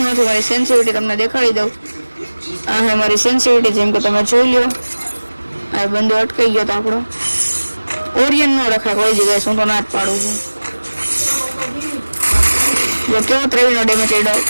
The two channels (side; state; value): both; inverted; correlation -1.00